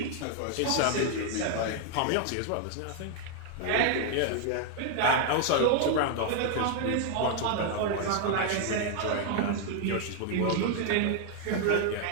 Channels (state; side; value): different; both; correlation 0.00